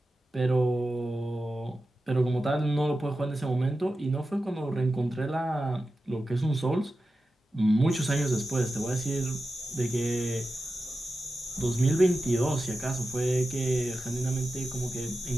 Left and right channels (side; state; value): both; normal; correlation 0.92